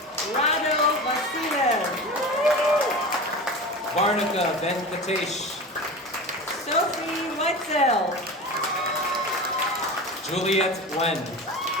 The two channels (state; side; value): normal; both; correlation 0.30